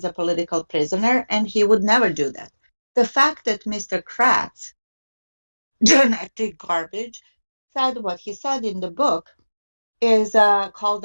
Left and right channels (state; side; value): inverted; both; correlation -1.00